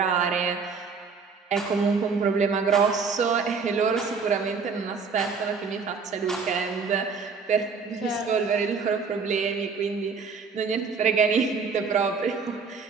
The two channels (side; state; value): left; quieter; 5.2 dB